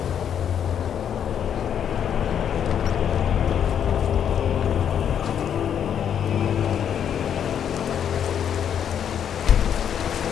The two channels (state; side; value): quieter; right; 8.7 dB